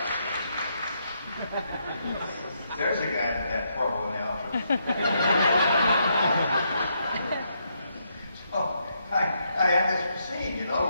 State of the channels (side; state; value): both; inverted; correlation -0.77